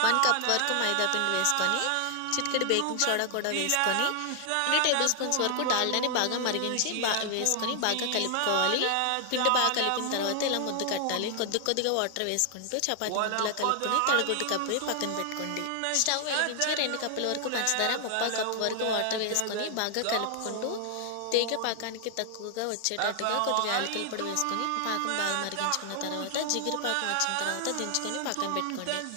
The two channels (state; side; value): different; both; correlation 0.00